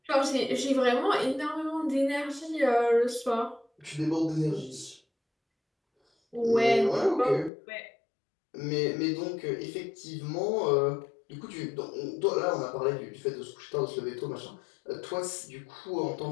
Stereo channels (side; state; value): right; drops out; at 7.5 s